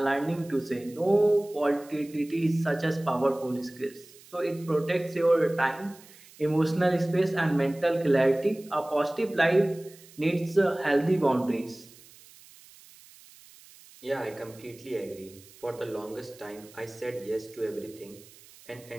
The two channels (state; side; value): noise; right; hiss, 23 dB below the sound